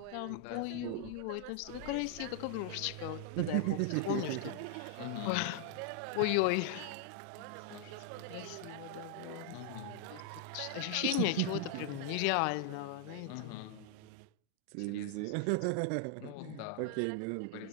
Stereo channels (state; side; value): different; both; correlation 0.00